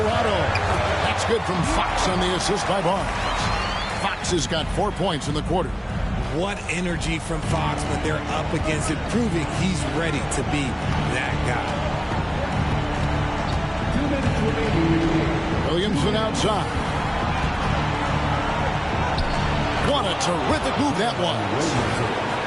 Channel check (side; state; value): both; identical; correlation 1.00